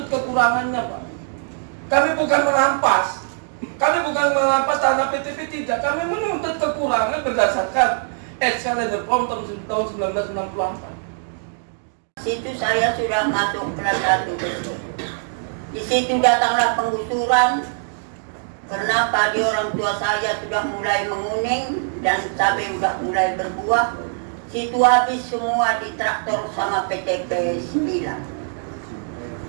kekurangannya Pak. Kami bukan merampas. Kami bukan merampas tanah PTP, tidak. Kami menuntut kekurangan berdasarkan Excellencer Form tahun 1964. Situ saya sudah masuk kelas 1. Di situ datanglah penggusuran. Karena padi orang tua saya sudah mulai menguning dan cabai sudah mulai berbuah. Situ habis semua di traktor sama PTP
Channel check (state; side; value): silent; left; digital silence